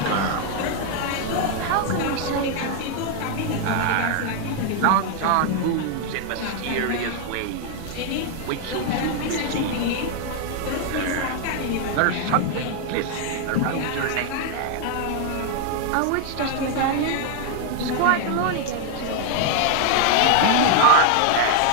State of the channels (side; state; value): both; different; correlation 0.00